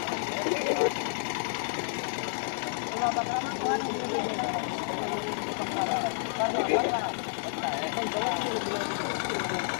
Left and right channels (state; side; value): silent; right; digital silence